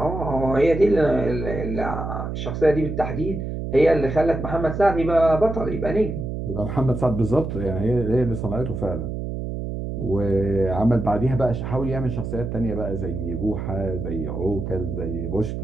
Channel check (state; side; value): noise; right; hum, 5 dB below the sound